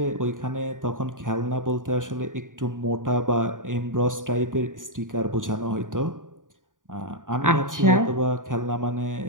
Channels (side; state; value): left; late; 0.88 ms